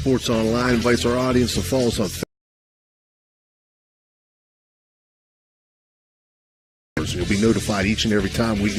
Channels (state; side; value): identical; both; correlation 1.00